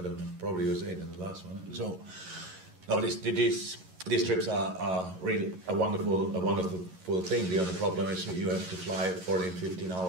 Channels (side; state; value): left; late; 11 ms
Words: know. Probably USA than the last one. So, no, these trips are really a wonderful thing. The only problem is you have to fly 14, 15